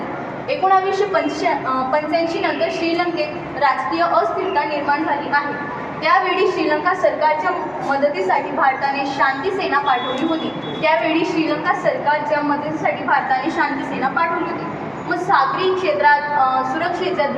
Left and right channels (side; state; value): both; identical; correlation 1.00